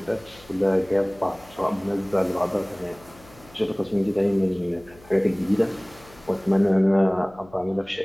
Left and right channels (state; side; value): noise; left; hum, 24 dB below the sound